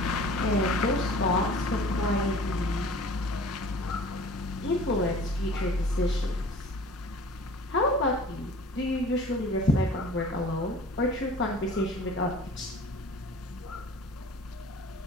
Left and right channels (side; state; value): both; normal; correlation 0.45